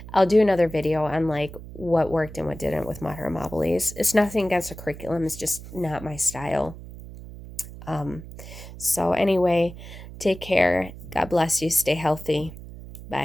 do another video on what worked and what didn't with Mater Amabilis. It's nothing against the curriculum. It's just not my style. So anyway, take care. God bless you. Stay healthy.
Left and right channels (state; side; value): noise; right; hum, 14 dB below the sound